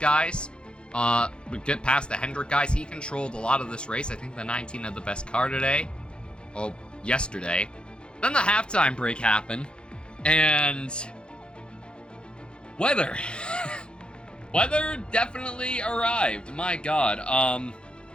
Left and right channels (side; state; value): right; late; 0.053 ms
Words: Get past the Hendrick guys. He controlled a lot of this race. I think the 19 had the best car today. Oh, yesterday. Then the halftime break happened. And weather. Weather definitely arrived. My God.